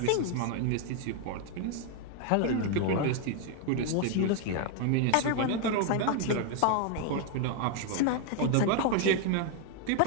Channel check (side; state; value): both; different; correlation 0.01